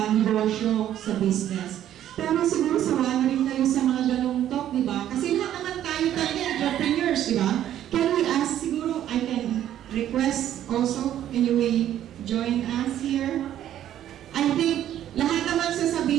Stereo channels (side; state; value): left; quieter; 11.5 dB